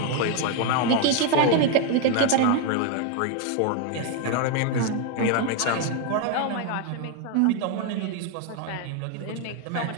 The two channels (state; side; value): different; both; correlation 0.01